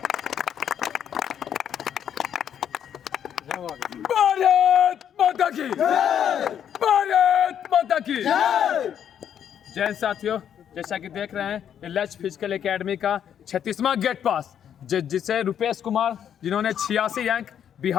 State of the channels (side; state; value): right; quieter; 9.1 dB